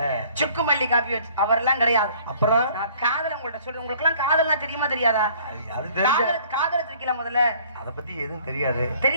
சுக்கு மல்லி காப்பி வச்சு அவரெல்லாம் கிடையாது. அப்புறம் நான் காதல் உங்கள்ட்ட சொல்றேன். உங்களுக்கு எல்லாம் காதல்லாம் தெரியுமா தெரியாதா? காதல் வச்சிருக்கீங்களா? முதல்ல அத பத்தி எதுவும் தெரியாது.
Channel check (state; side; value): inverted; both; correlation -0.55